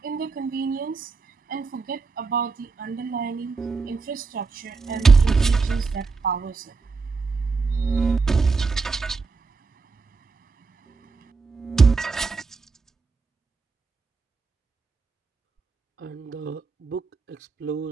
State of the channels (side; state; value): left; quieter; 4.4 dB